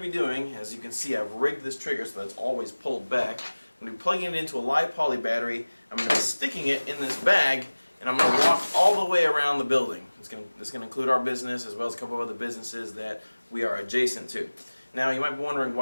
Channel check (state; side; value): inverted; both; correlation -1.00